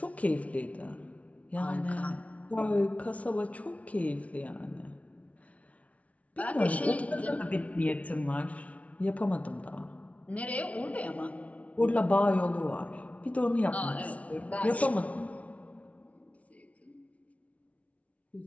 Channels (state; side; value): late; right; 0.066 ms